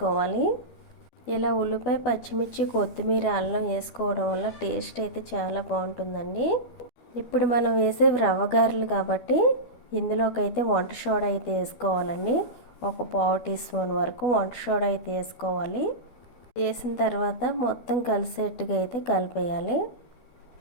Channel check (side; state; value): right; late; 12 ms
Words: ఇలా ఉల్లిపాయ, పచ్చిమిర్చి, కొత్తిమీర, అల్లం వేసుకోవడం వల్ల టేస్ట్ అయితే చాలా బాగుంటుందండి. ఇప్పుడు మనం వేసే రవ్వ గారెలు కాబట్టి ఇందులోకి అయితే వంట సోడా అయితే వేసుకోవాలండి. 1 పావు టీ స్పూన్ వరకు వంట సోడా అయితే వేసుకోవాలి. వేసిన తర్వాత మొత్తం కలిసేట్టుగా అయితే కలిపేయాలి.